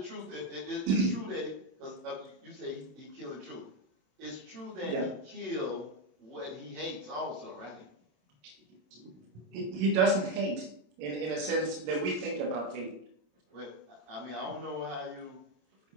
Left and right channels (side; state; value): left; late; 27 ms